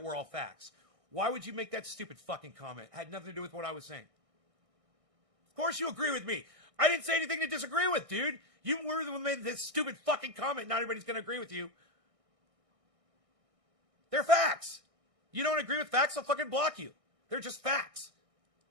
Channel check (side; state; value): left; late; 1.6 ms